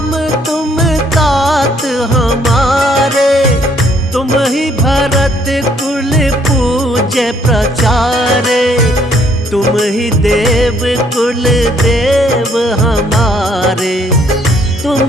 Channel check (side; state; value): both; normal; correlation 0.66